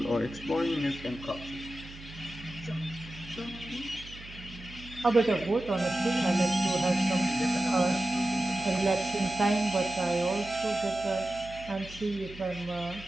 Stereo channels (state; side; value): noise; right; hum, 16 dB below the sound